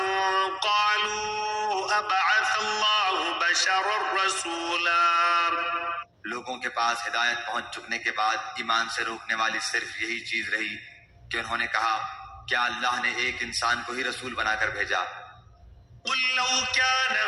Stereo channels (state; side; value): identical; both; correlation 1.00